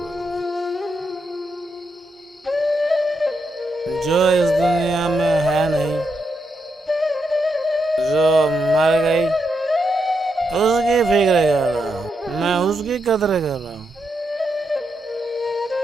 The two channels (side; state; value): both; normal; correlation 0.83